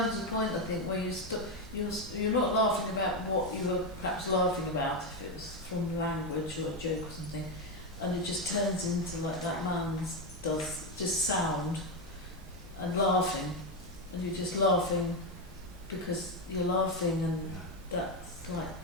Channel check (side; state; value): both; normal; correlation 0.09